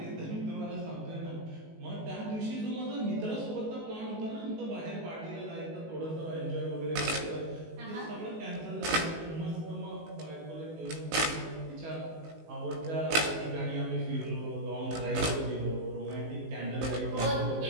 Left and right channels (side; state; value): left; late; 19 ms